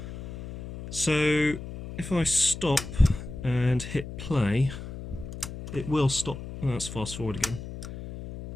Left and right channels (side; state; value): left; noise; hum, 10 dB below the sound